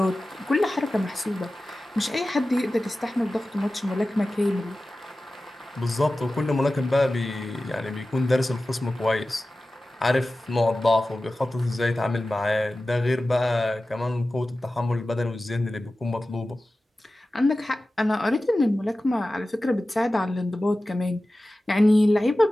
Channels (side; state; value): both; normal; correlation 0.95